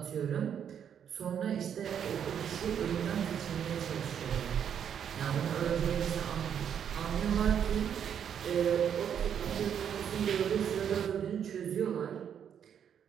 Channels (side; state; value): left; quieter; 8.5 dB